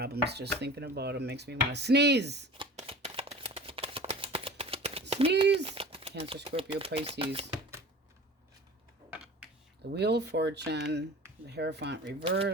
just thinking about them. Makes me want to sneeze. Sneeze. Cancer, Scorpio, Pisces. The Wheel of Fortune. The Hierophant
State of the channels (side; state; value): both; normal; correlation 0.39